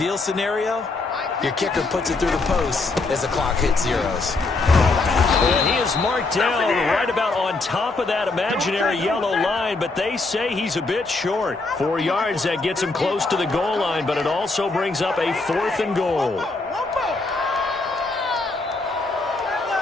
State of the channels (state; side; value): quieter; right; 3.5 dB